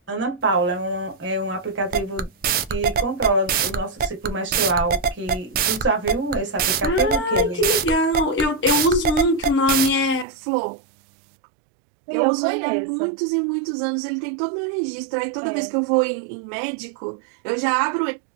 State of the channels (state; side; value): drops out; left; at 10.2 s